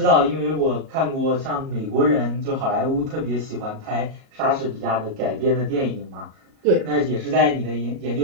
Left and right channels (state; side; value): late; left; 38 ms